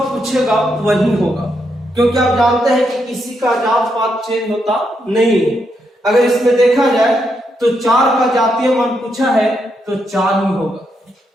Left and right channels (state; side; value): normal; both; correlation 0.80